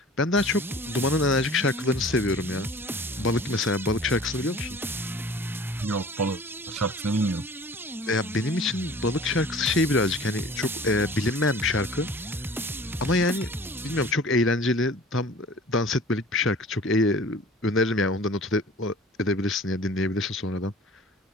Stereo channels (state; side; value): normal; both; correlation 0.46